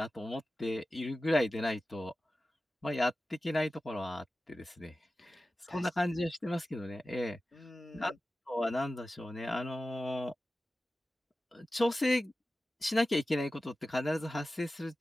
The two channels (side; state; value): both; normal; correlation 0.95